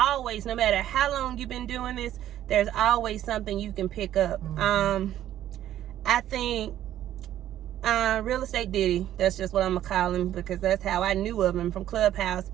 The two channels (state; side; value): quieter; left; 12.1 dB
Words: no matter how long you've been doing this, there's always something you can pick up. I think Real Estate Diddy, that's just what I'm going to call him because that's how I knew of him from Clubhouse.